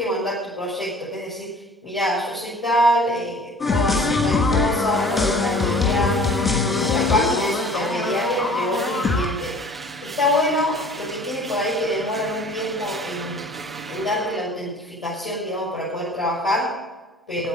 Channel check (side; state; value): both; normal; correlation 0.48